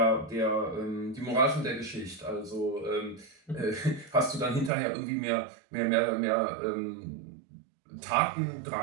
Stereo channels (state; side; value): drops out; left; at 4.7 s